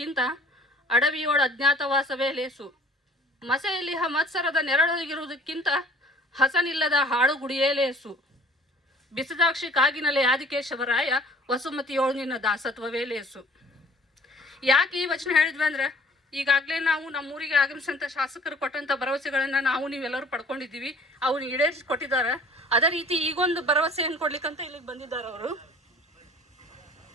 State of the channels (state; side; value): normal; both; correlation 0.52